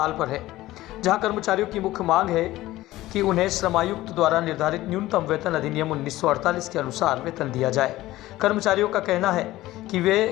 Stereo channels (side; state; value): right; quieter; 16.5 dB